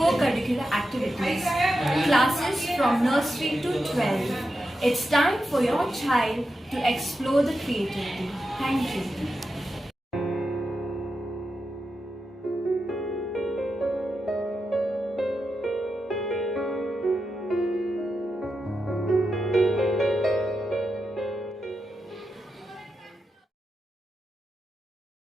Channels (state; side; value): normal; both; correlation 0.88